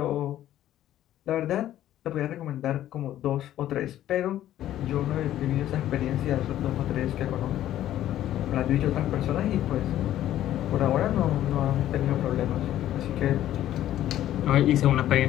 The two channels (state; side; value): quieter; right; 12.6 dB